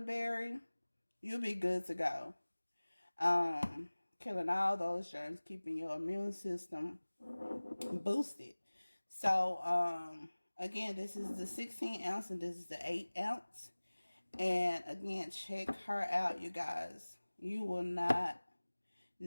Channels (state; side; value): inverted; both; correlation -1.00